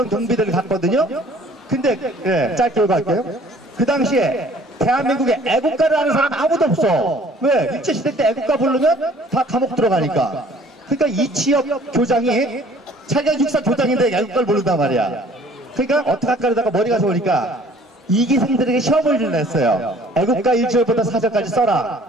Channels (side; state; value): both; normal; correlation 0.54